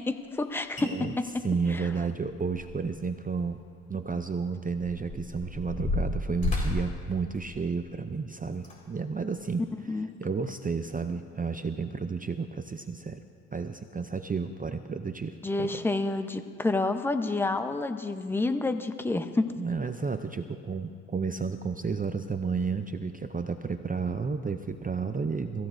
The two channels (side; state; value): both; normal; correlation 0.71